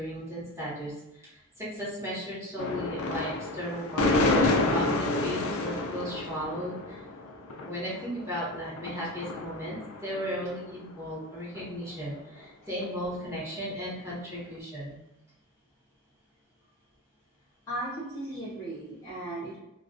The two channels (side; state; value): both; normal; correlation 0.25